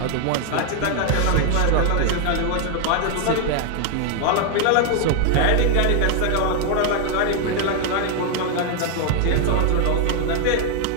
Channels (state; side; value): different; both; correlation 0.00